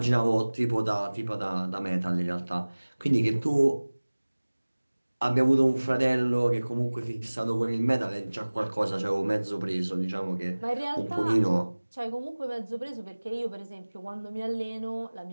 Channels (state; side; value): inverted; both; correlation -1.00